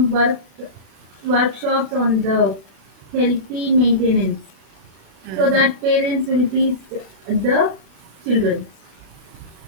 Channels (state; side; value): late; left; 36 ms